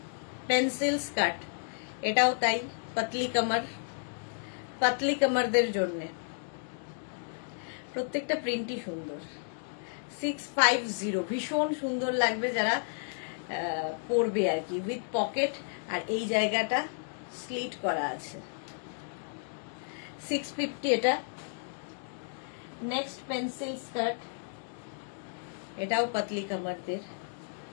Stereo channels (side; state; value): right; silent; digital silence